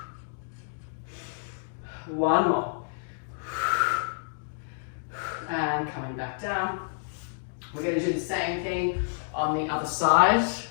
One more. And coming back down. We're going to do the same thing on the other side.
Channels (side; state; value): right; silent; digital silence